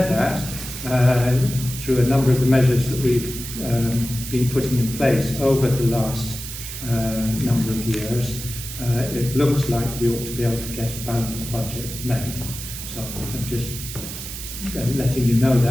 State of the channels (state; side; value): noise; right; hiss, 9 dB below the sound